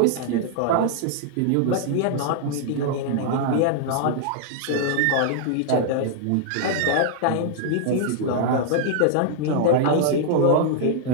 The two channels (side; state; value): both; different; correlation -0.01